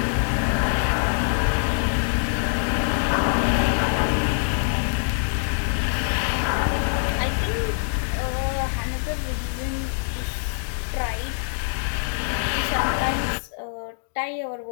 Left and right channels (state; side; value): silent; right; digital silence